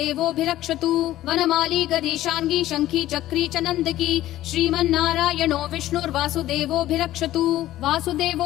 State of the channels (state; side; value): quieter; right; 14.5 dB